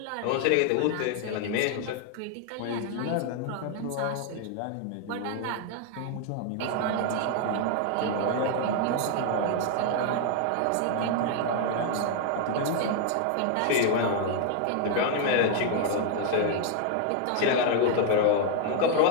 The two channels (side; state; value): both; different; correlation 0.00